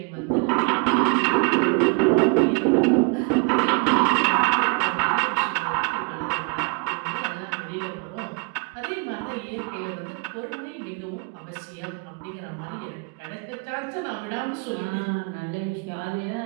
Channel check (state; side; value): quieter; left; 33.5 dB